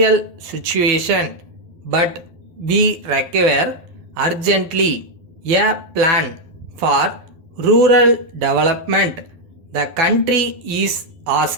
situation, but we require urgently a plan for rural development. The country is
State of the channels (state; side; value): late; left; 12 ms